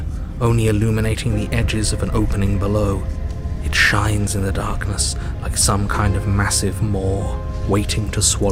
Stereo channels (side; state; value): both; identical; correlation 1.00